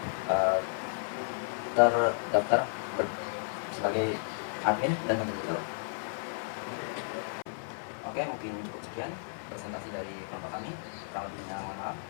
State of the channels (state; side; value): silent; right; 56 dB below the other